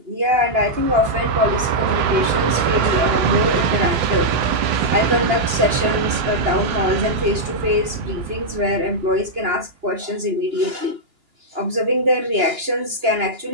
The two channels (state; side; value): late; left; 2.9 ms